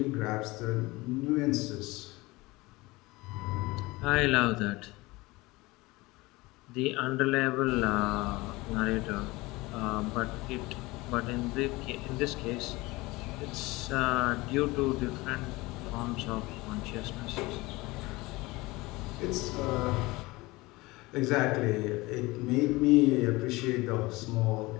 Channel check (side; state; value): right; quieter; 21.8 dB